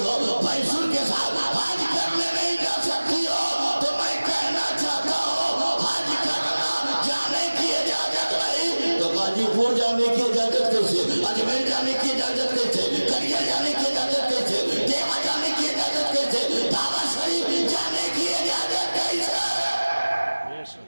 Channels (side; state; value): both; inverted; correlation -1.00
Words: भैंसुर के साथ हज करने नहीं जा सकती हो। तो मैं कहना चाहता हूँ, हज करना जाने की इजाजत नहीं तो गाजीपुर जाने की इजाजत कैसे, अजमेर जाने की इजाजत कैसे, करिया जाने की इजाजत कैसे, देवा जाने की इजाजत कैसे, दावा शरीफ जाने की इजाजत कैसे?